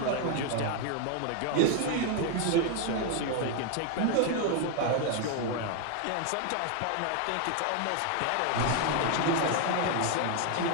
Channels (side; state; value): both; different; correlation 0.00